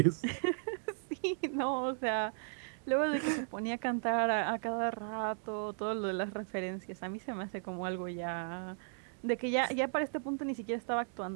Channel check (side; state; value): left; silent; digital silence